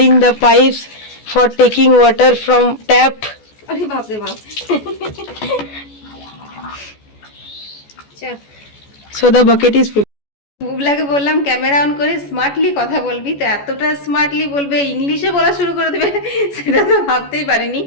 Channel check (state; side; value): late; right; 14 ms